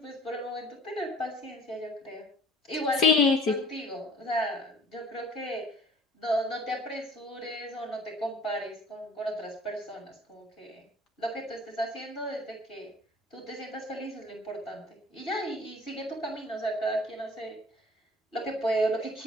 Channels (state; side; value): normal; both; correlation 0.50